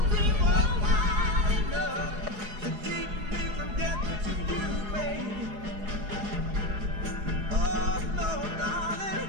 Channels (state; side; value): late; left; 4.8 ms